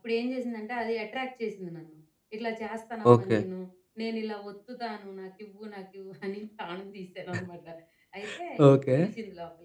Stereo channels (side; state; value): both; identical; correlation 1.00